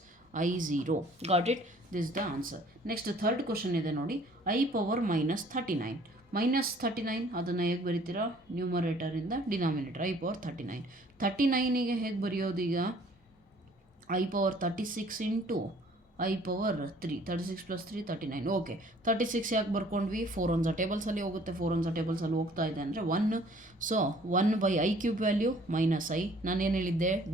Got it? This the answer. Next third question ಇದೆ ನೋಡಿ, ಐ ಪವರ್ -39. -39 ಅದನ್ನು ಹೇಗೆ ಬರೀತೀರಾ, ನ್ಯೂಮರೇಟರಿಂದ ಡಿನಾಮಿನೇಟರ್ ಐ ಪವರ್ 39. 39ಗೆ ಹೇಗೆ ಬರೆಯೋದು ಈಗ, I power 36 into i power 3, 36 + 3 39. Okay, 36 ಯಾಕೆ ಬರ್ಕೊಂಡ್ವಿ, 4 ones ಟೇಬಲ್ಸಲ್ಲಿ ಹೋಗುತ್ತೆ, 4 ones ಟೇಬಲ್ಸಲ್ಲಿ ಹೋಗ್ತಾ ಇದೆ ಅಂದರೆ 1. So 1/i cube value -i. ನಾನೇನು ಹೇಳಿದ್ದೆ,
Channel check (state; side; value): normal; both; correlation 0.56